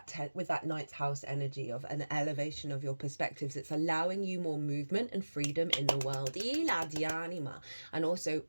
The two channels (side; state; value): both; inverted; correlation -1.00